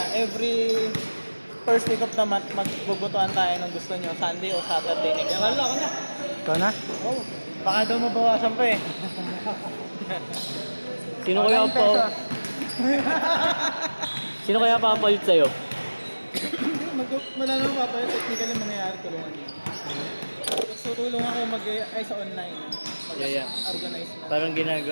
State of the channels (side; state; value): both; inverted; correlation -1.00